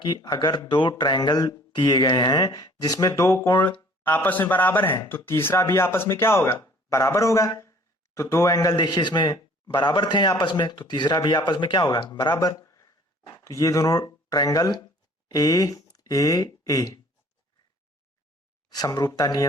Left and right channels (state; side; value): normal; both; correlation 0.53